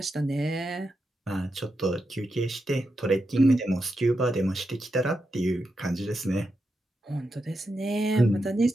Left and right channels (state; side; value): normal; both; correlation 0.87